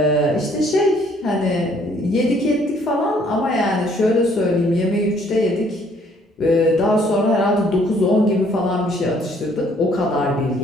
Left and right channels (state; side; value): normal; both; correlation 0.62